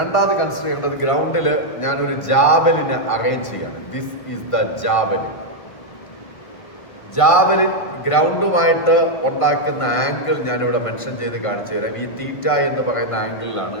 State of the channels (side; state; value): right; late; 1.5 ms